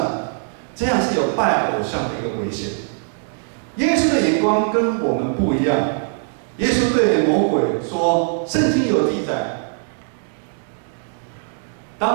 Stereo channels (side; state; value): left; silent; digital silence